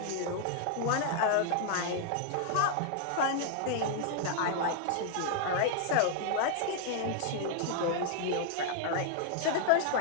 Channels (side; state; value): both; different; correlation 0.00